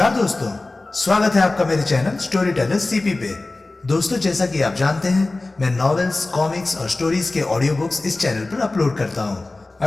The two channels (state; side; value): quieter; right; 3.1 dB